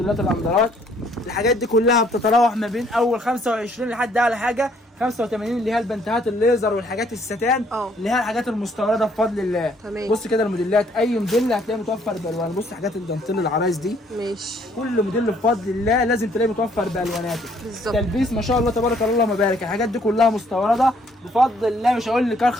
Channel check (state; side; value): normal; both; correlation 0.64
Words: الاندرات، الحاجات دي كلها بتتراوح ما بين اول 25 لحد اعلى حاجه 85 اللي هي البنتهات الليزر والحاجات الستان اللي هي الحاجات المستورده بفضل الله. تمام. بص كده الموديلات، اي موديل هتلاقيه متوفر بالوان. بص حاجات الدانتيل العرايس دي ماشي، كل موديل بفضل الله لازم تلاقيه متوفر بالواناته. بالظبط. تلبيس ما شاء الله تبارك الله اللهم بارك، الحاجات دي كلها مستورده بفضل الله. مش هقول لك